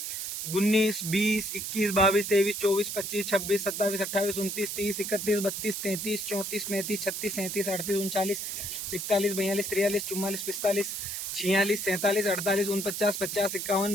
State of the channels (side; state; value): right; noise; hiss, 4 dB below the sound